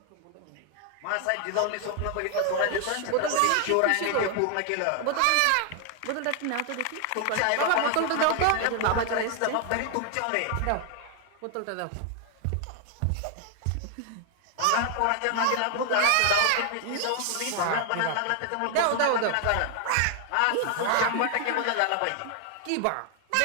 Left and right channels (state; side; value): different; both; correlation 0.00